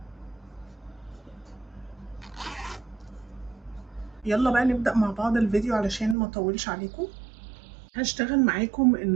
يلا بقى نبدا مع بعض الفيديو علشان ما اطولش عليكم. هشتغل معاكم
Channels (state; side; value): drops out; left; at 6.2 s